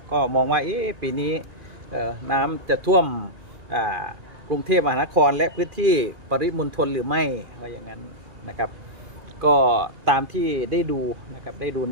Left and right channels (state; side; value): late; left; 2.4 ms